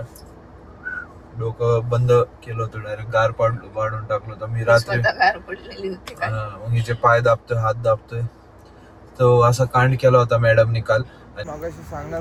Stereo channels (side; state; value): both; identical; correlation 1.00